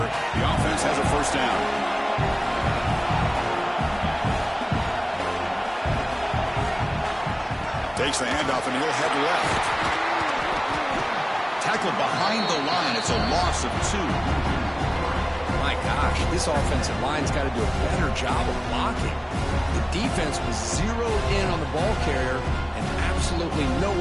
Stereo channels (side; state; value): both; identical; correlation 1.00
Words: The offense has a first down. Takes the handoff and he'll head left. Tackle behind the line. It's a loss of 2. My gosh, this offensive line's got to do a better job of blocking. The defense was zeroed in on the ball carrier and absolutely